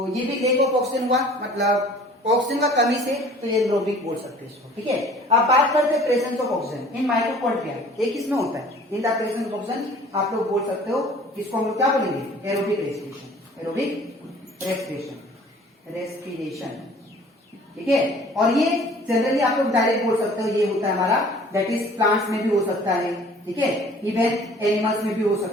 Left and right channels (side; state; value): both; normal; correlation 0.50